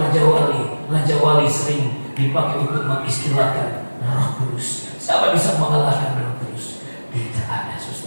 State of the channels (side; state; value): both; inverted; correlation -1.00